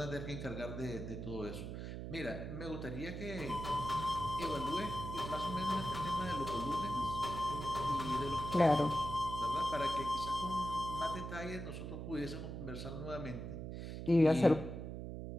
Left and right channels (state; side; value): noise; right; hum, 6 dB below the sound